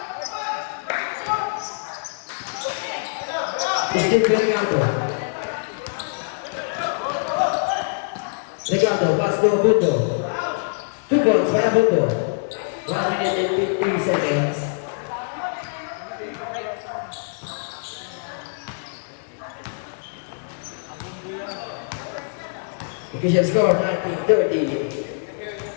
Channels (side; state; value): right; silent; digital silence